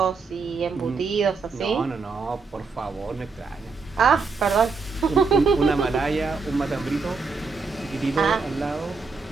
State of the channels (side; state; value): left; quieter; 4.6 dB